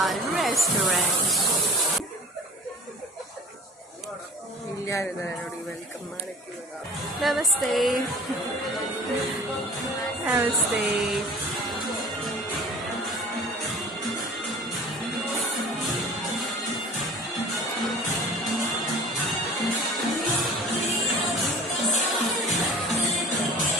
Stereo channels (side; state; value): both; normal; correlation 0.44